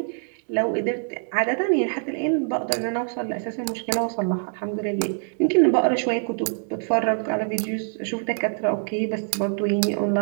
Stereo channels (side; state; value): left; silent; digital silence